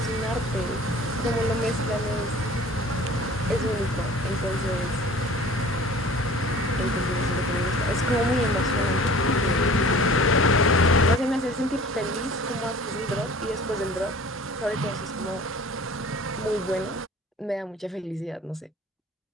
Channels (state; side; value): normal; both; correlation 0.45